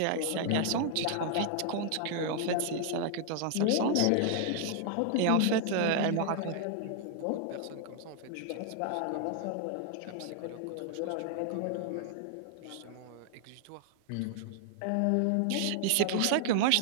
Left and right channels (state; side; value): different; both; correlation 0.00